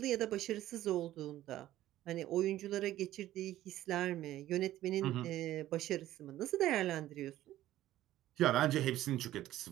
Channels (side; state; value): left; quieter; 14.1 dB